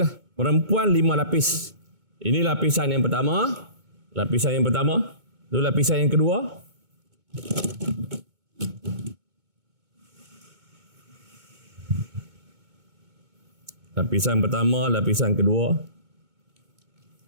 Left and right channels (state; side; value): late; left; 2.2 ms